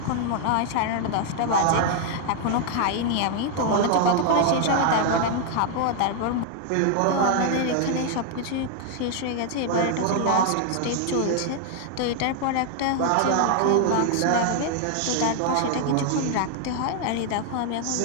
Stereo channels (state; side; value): different; both; correlation 0.00